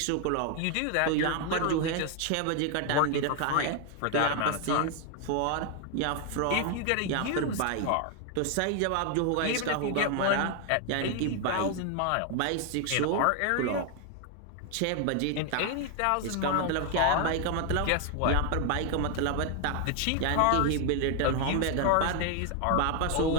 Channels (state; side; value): different; both; correlation 0.00